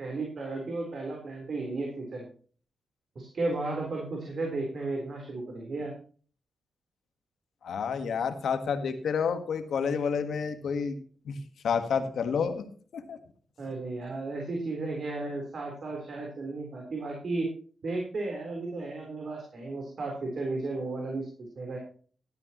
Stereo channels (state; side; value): normal; both; correlation 0.79